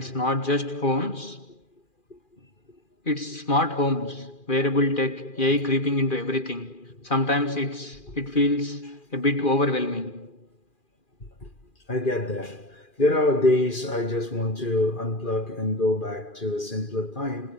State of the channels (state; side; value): late; right; 2.4 ms